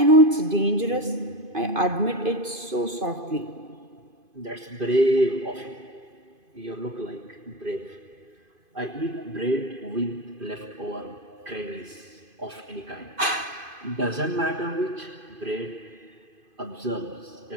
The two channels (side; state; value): left; late; 2.5 ms